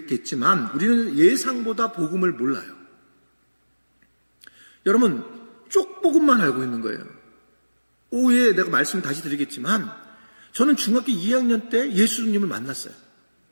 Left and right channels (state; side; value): inverted; both; correlation -1.00